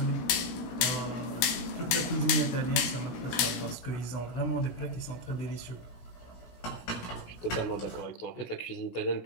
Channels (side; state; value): right; late; 17 ms